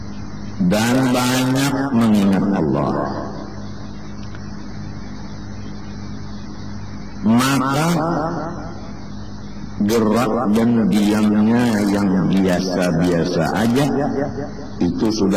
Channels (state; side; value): identical; both; correlation 1.00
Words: dan banyak mengingat Allah, maka gerak dan diamnya yang biasa-biasa aja itu